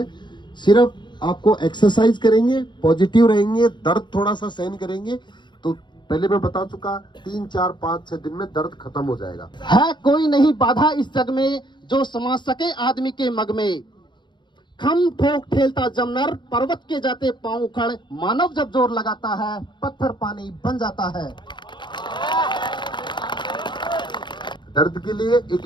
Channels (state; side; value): late; right; 0.22 ms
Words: सिर्फ आपको एक्सरसाइज करेंगे, पॉजिटिव रहेंगे, दर्द थोड़ा सा सहन करेंगे, तो पहले मैं बता चुका, 3, 4, 5, 6 दिन में दर्द खत्म हो जाएगा। है कोई नहीं बाधा इस जग में जो समा सके आदमी के मग में। खम ठोक ठेलता जमनर, पर्वत के जाते पांव उखड़, मानव जब जोर लगाता है पत्थर पानी बन जाता है। दर्द के लिए एक